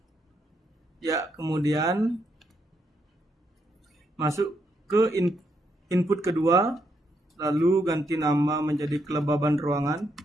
Ya, kemudian masuk ke input kedua, lalu ganti nama menjadi kelembaban ruangan.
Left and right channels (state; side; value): normal; both; correlation 0.78